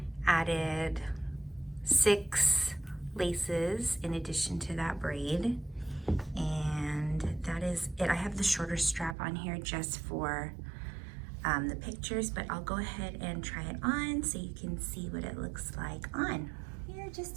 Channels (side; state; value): left; drops out; at 9.2 s